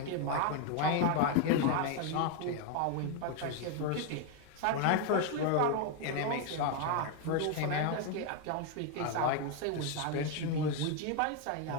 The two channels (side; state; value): both; different; correlation 0.01